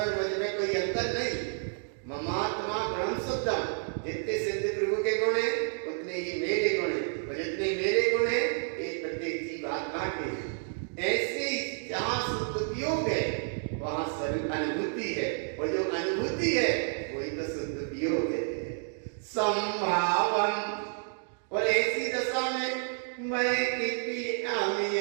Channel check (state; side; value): silent; left; 58 dB below the other